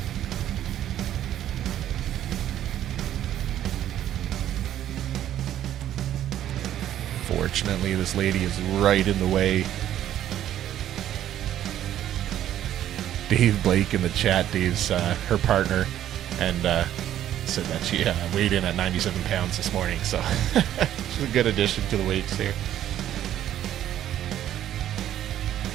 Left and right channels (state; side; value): quieter; left; 11.7 dB